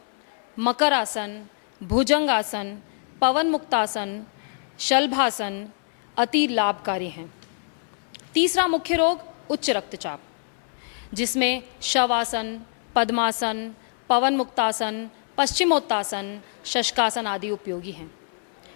मकरासन, भुजंगासन, पवन मुक्तासन, शलभासन अति लाभकारी हैं। तीसरा मुख्य रोग उच्च रक्तचाप, जिसमें शवासन, पद्मासन, पवन मुक्तासन, पश्चिमोत्तासन, शशकासन आदि उपयोगी हैं।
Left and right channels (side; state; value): right; silent; digital silence